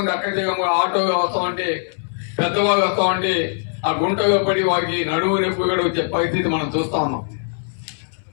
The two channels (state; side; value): silent; right; 63 dB below the other